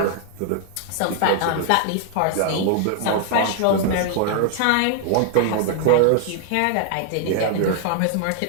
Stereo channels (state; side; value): different; both; correlation 0.00